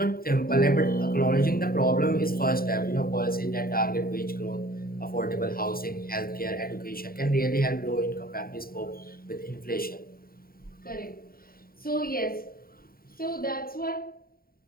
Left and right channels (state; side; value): late; right; 0.43 ms